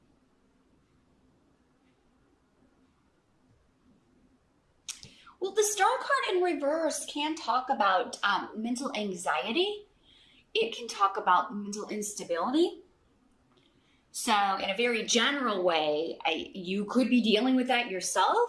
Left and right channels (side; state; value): both; identical; correlation 1.00